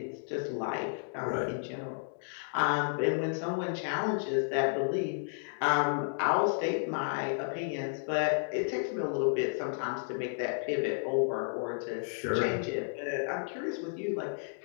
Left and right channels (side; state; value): right; silent; digital silence